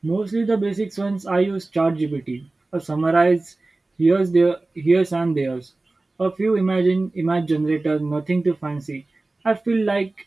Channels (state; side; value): quieter; left; 3.1 dB